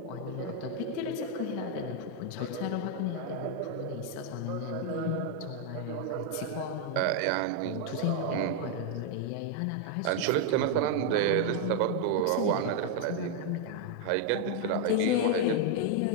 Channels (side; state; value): both; different; correlation 0.00